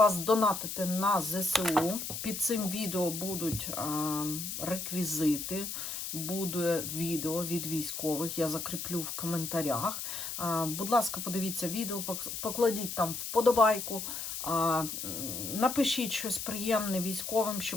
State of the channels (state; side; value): noise; left; hiss, 5 dB below the sound